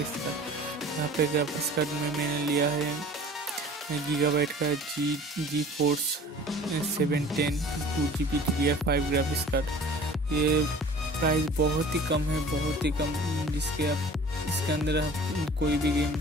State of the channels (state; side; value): normal; both; correlation 0.46